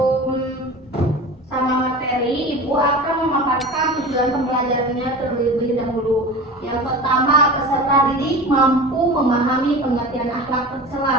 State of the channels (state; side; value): normal; both; correlation 0.34